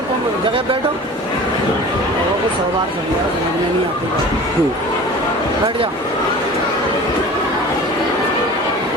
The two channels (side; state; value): both; normal; correlation 0.40